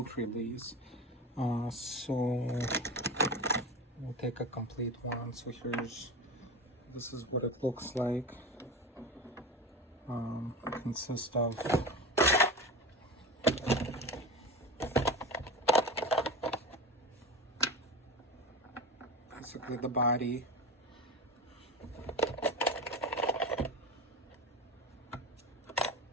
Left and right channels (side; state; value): both; normal; correlation 0.26